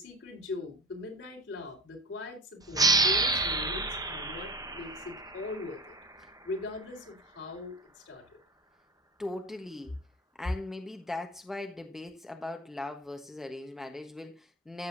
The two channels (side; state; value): both; normal; correlation 0.33